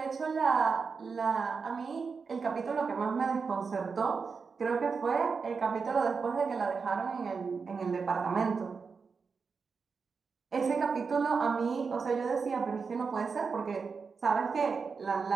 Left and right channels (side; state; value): left; quieter; 5.2 dB